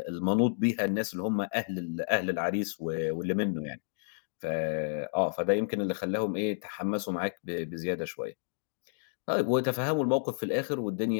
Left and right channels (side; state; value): right; silent; digital silence